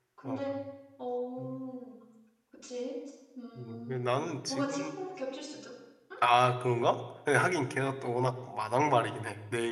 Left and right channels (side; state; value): both; identical; correlation 1.00